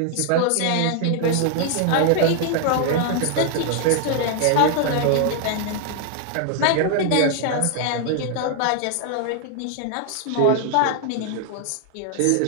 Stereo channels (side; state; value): both; different; correlation 0.00